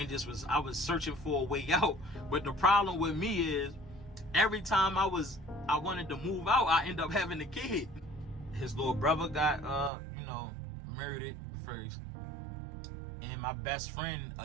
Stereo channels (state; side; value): drops out; left; at 9.9 s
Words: I was searching for a way out. But the problem with me is every time I wanted to move out, I end up having a kid. His little brother got murdered first. And my best friend